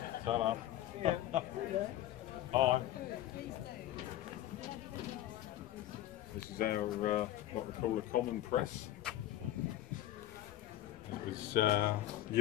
Salam. Hi. This is our what we call a common press. It was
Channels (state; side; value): quieter; right; 13.5 dB